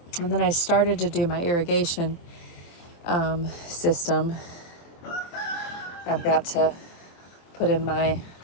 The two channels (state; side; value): late; right; 23 ms